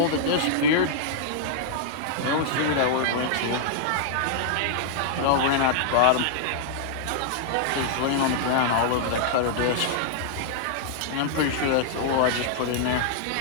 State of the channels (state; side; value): different; both; correlation -0.01